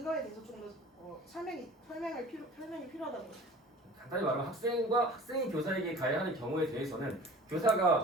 대해서 좀 더 설명이 필요하다는 거죠. 간단히 말하면 학생이 교사에게 가해하는 경우에 대해서는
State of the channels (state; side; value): normal; both; correlation 0.43